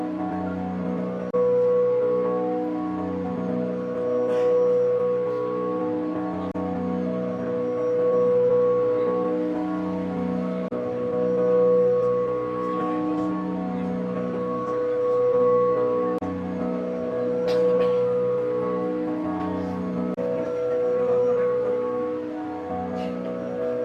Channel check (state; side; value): identical; both; correlation 1.00